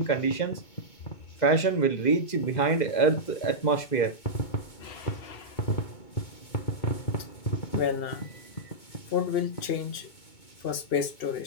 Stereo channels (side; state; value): right; late; 2.8 ms